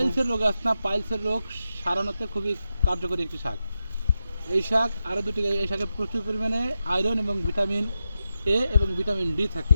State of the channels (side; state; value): both; inverted; correlation -0.89